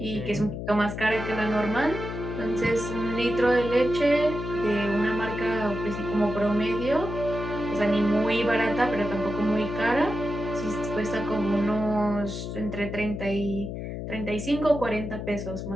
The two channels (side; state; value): left; noise; hum, 6 dB below the sound